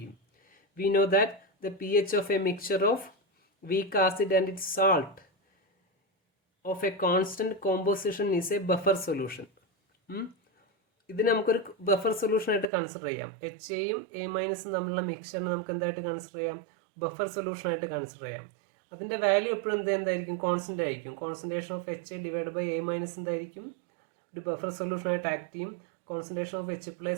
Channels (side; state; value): left; drops out; at 12.7 s